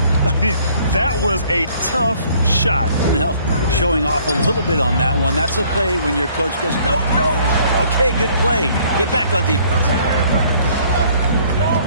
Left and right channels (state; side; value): inverted; both; correlation -0.60